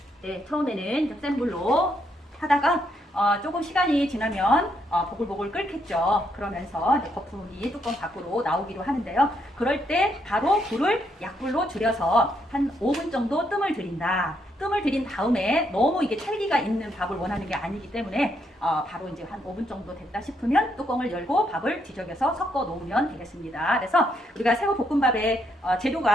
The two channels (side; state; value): both; normal; correlation 0.75